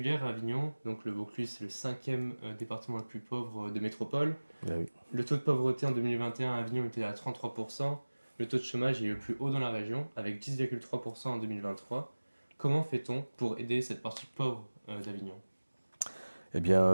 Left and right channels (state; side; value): inverted; both; correlation -1.00